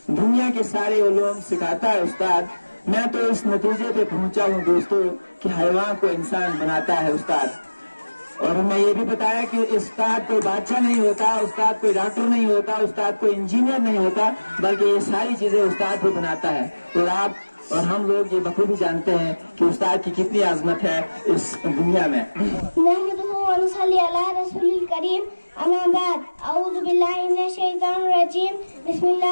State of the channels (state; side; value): inverted; both; correlation -1.00